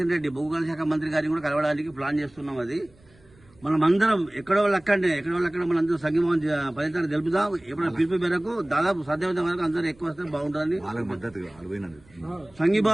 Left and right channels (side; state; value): right; noise; rumble, 29 dB below the sound